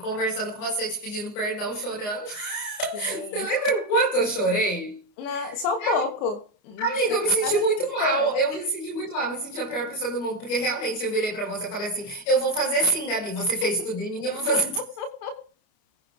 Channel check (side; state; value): right; late; 29 ms